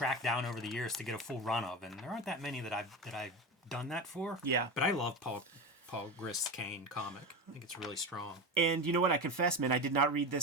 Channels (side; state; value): both; normal; correlation 0.22